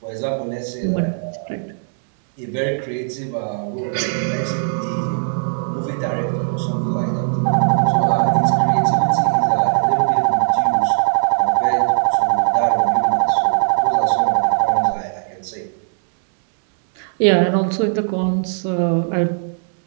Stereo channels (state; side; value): silent; left; digital silence